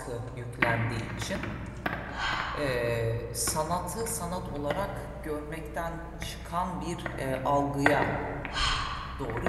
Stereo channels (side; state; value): both; identical; correlation 1.00